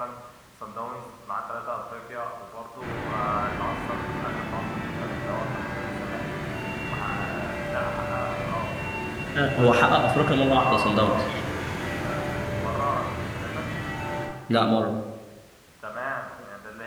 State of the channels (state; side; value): identical; both; correlation 1.00